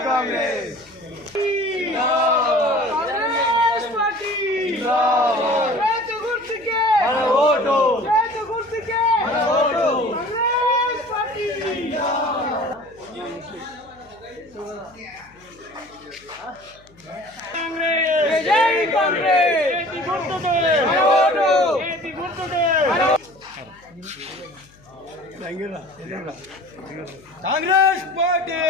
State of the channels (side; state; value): left; noise; hum, 28 dB below the sound